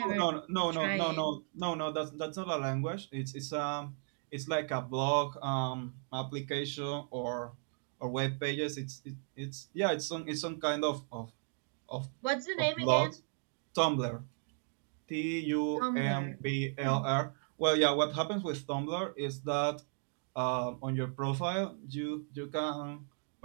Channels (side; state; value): left; silent; 54 dB below the other